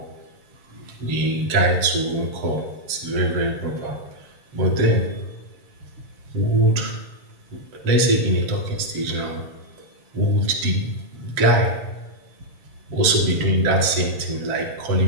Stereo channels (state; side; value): late; left; 7.5 ms